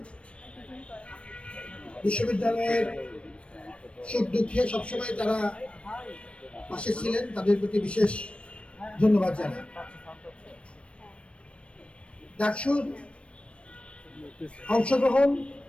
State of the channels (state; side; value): late; right; 0.060 ms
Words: বিশ্ববিদ্যালয়ের সুখ দুঃখে সবসময় তারা পাশে ছিলেন, তাদের প্রতি বিশেষ ধন্যবাদ জানাই। ডাকসুর অংশগ্রহণ